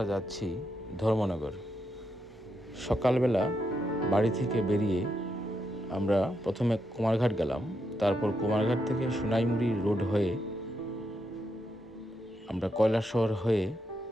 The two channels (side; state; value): both; normal; correlation 0.82